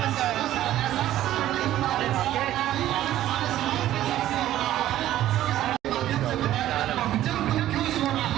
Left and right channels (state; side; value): quieter; left; 13.3 dB